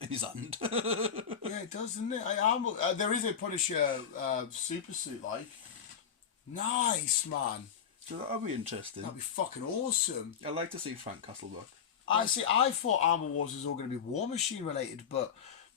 his hand. Yeah, it does, doesn't it? There is a Punisher super suit, like. Nice, man. So that'll be interesting. That'd be fucking awesome. I'd like to see Frank Castle back. I thought Armor Wars was all going to be War Machine related, but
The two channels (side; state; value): right; quieter; 7.6 dB